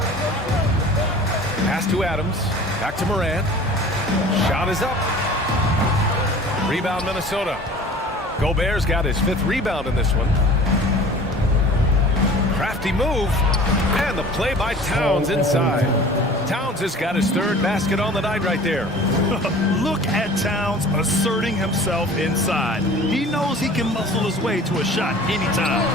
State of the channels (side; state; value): both; normal; correlation 0.44